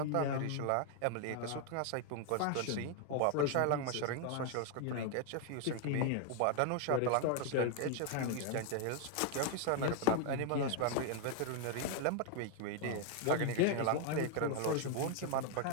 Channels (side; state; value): both; different; correlation 0.00